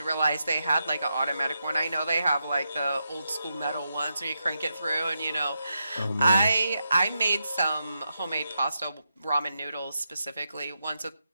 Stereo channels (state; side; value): inverted; both; correlation -0.85